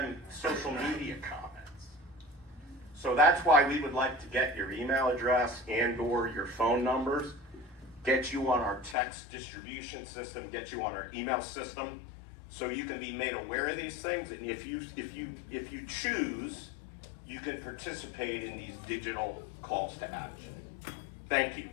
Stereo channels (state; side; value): drops out; right; at 9.0 s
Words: social media comments. So that's why we would like to get your email address and or your phone numbers, get you on our text distribution system, get you on our email system, so you can be made aware of these things. And if you choose, you can participate in these digital calls to action. Thank you.